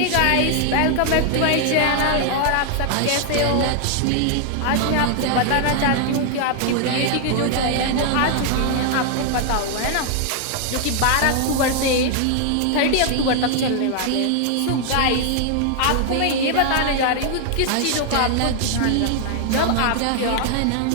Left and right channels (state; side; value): different; both; correlation 0.00